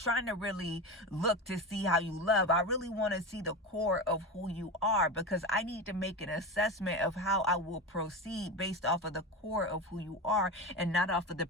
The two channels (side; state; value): both; normal; correlation 0.22